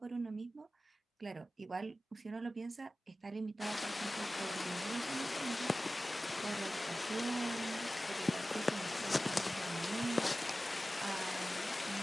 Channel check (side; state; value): both; normal; correlation 0.96